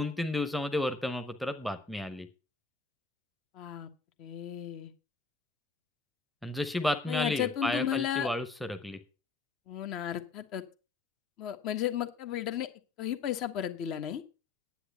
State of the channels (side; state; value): right; quieter; 4.3 dB